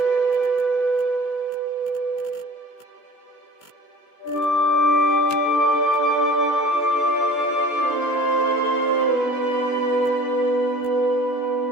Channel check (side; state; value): right; late; 16 ms